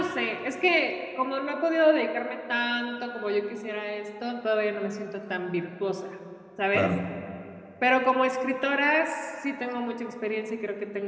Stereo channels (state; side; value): identical; both; correlation 1.00